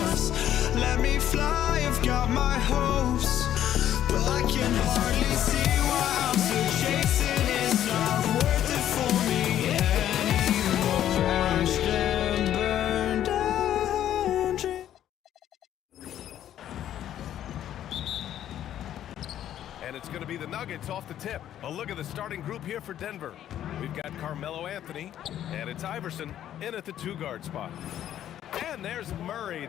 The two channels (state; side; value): quieter; right; 11.3 dB